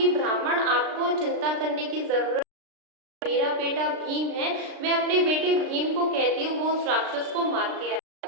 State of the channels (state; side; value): late; left; 36 ms